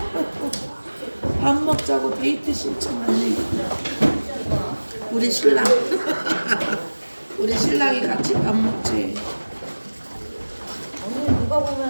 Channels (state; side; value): inverted; both; correlation -1.00